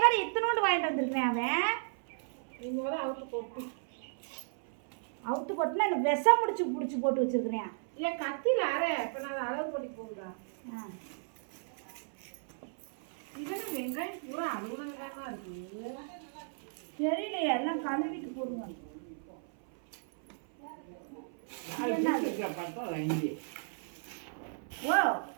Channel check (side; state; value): left; silent; 55 dB below the other